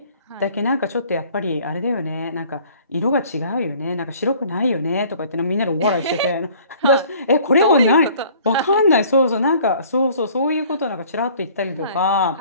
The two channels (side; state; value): both; inverted; correlation -0.53